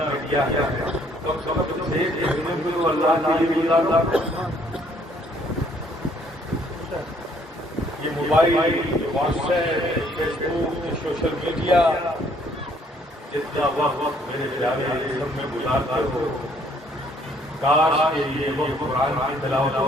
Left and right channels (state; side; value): normal; both; correlation 0.63